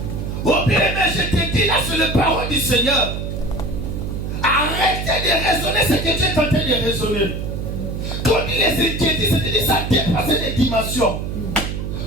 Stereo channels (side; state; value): right; noise; hum, 4 dB below the sound